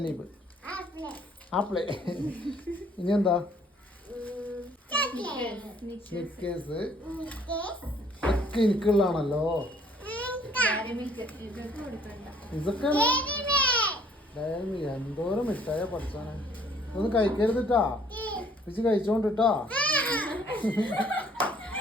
ആപ്പിള്, ഇനി എന്താ സ്നിക്കേഴ്സ് ഒക്കെ എനിക്കുള്ളതാണല്ലോ. ഇതൊക്കെ എന്തോരം മിഠായ പഠിച്ചാണ്. ഇതൊന്നും കഴിക്കരുതിട്ടാ, പിച്ച് കഴിച്ചോണ്ടിട്ടാ.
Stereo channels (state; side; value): normal; both; correlation 0.60